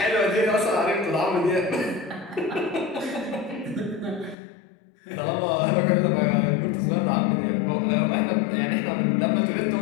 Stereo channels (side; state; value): right; drops out; at 4.4 s